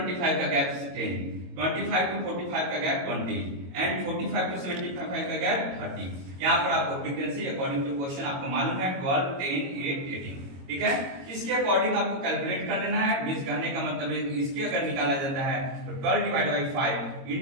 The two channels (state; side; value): late; left; 22 ms